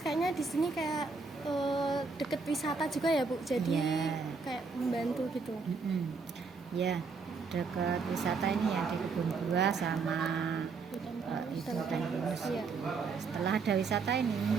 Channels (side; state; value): left; quieter; 4.6 dB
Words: di sini kayak deket wisata juga ya Bu, jadi Iya. kayak membantu gitu. Ya, dekat wisata ini ya, di Kebun Buah sama itu hutan pinus. Iya. Setelah ada wisata ini